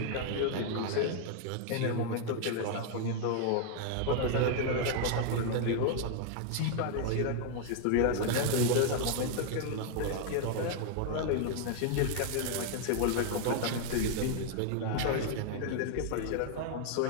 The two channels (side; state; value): both; different; correlation 0.00